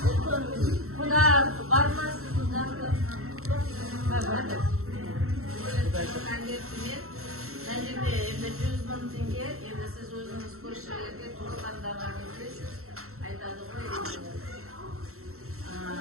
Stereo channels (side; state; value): left; late; 0.63 ms